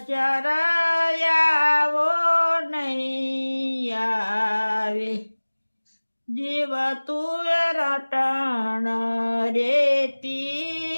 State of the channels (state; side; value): inverted; both; correlation -1.00